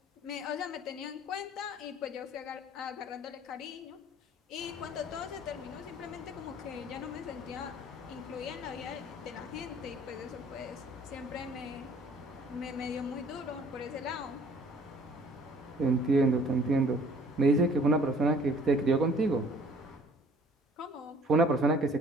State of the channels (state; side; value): normal; both; correlation 0.54